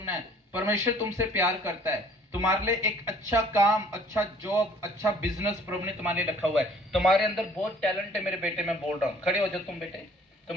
है। परमेश्वर तुमसे प्यार करता है। तुम्हारे लिए एक अच्छा काम, अच्छा जॉब, अच्छा बिजनेस प्रभु ने तुम्हारे लिए रखा हुआ है। तुम्हारे अंदर बहुत टैलेंट है मेरे बेटे, मैं बोल रहा हूँ। खड़े हो जाओ तुम बेटे,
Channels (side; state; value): both; normal; correlation 0.55